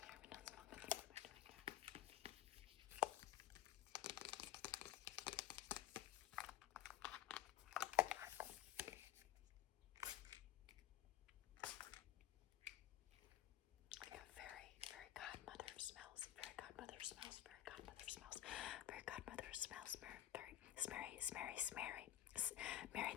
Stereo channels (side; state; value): right; quieter; 12.3 dB